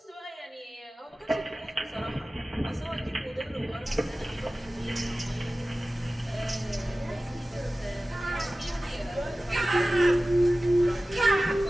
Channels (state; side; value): normal; both; correlation 0.96